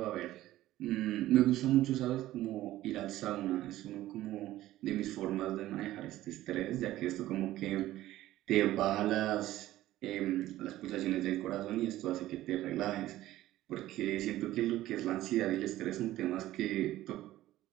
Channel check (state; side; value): quieter; left; 15.1 dB